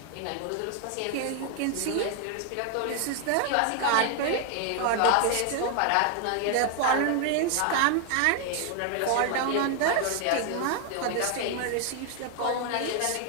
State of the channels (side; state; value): both; different; correlation 0.00